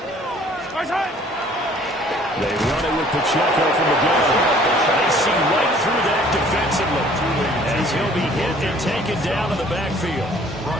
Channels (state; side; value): normal; both; correlation 0.55